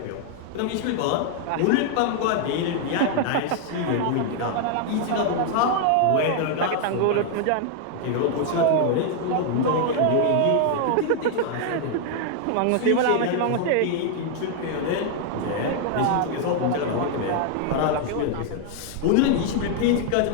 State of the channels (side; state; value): both; different; correlation 0.00